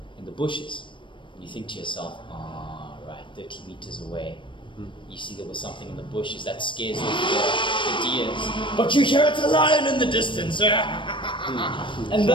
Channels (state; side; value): late; right; 0.24 ms